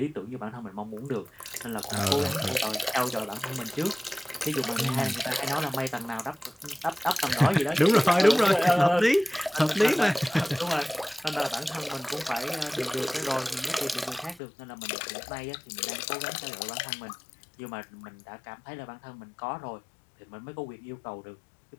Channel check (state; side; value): drops out; right; at 14.4 s